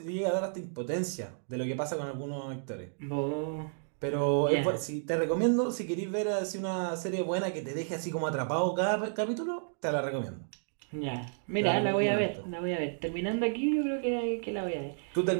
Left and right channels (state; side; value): silent; left; digital silence